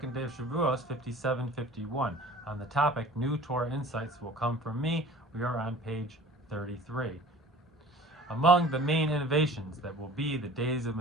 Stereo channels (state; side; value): normal; both; correlation 0.45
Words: day of Shavuot 5751. On the topic, New Torah Insights Will Come From Me, we are on page 33. Among the main innovations that will be the days of